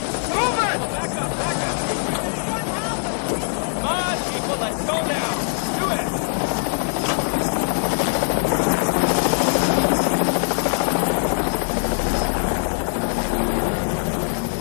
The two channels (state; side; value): silent; right; 64 dB below the other